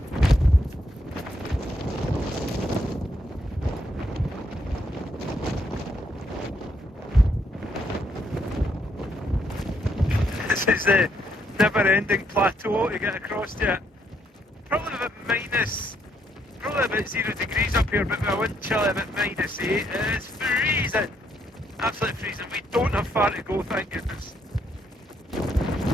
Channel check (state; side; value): normal; both; correlation 0.74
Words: This is the never-ending plateau to get across to it. Probably about -0 degrees up here, but with a wind chill about -8. It's freezing, absolutely freezing. We don't have far to go, thank goodness.